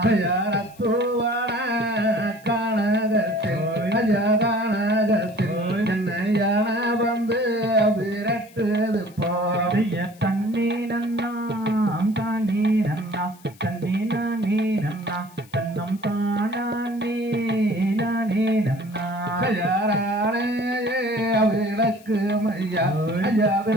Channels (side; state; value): left; noise; hiss, 26 dB below the sound